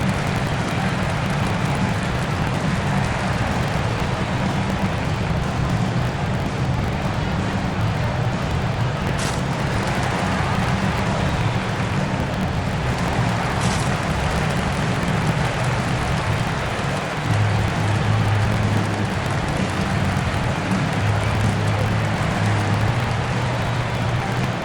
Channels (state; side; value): identical; both; correlation 1.00